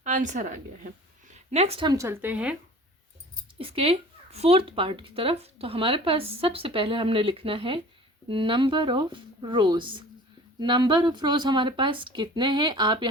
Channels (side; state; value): both; normal; correlation 0.44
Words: आंसर आ गया है। नेक्स्ट हम चलते हैं इसके फोर्थ पार्ट की तरफ। तो हमारे पास सबसे पहले हमने लिखना है number of rows. Number of rows हमारे पास कितने हैं आप